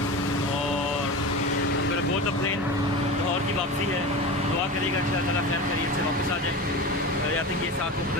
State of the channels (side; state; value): both; normal; correlation 0.28